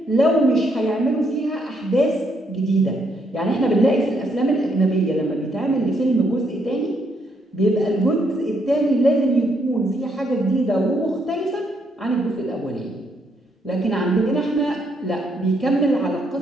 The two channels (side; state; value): both; normal; correlation 0.74